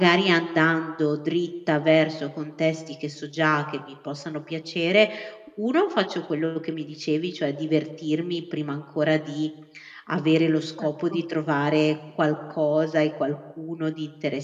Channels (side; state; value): both; identical; correlation 1.00